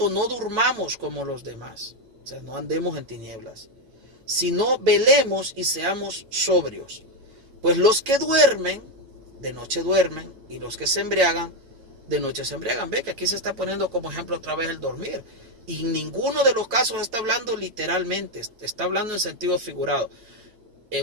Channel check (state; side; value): late; left; 8.8 ms